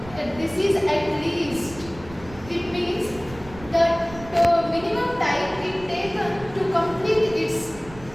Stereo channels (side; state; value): right; noise; rumble, 17 dB below the sound